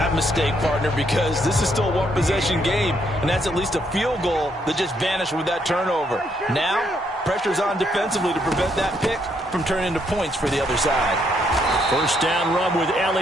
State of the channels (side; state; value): both; normal; correlation 0.73